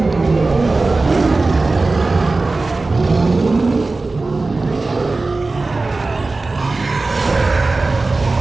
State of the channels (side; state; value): left; quieter; 3.5 dB